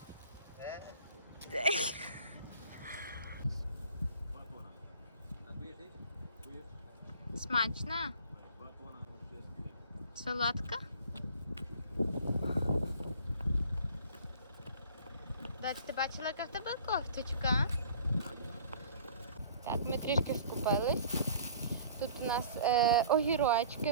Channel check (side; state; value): both; inverted; correlation -0.48